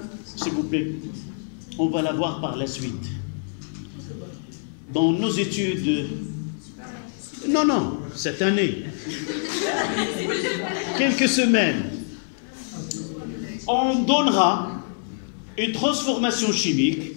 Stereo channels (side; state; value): right; silent; 61 dB below the other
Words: s'il vous plaît, on va la voir par la suite. Dans nos études, non, cette année, quelques semaines, on donnera une transformation chimique.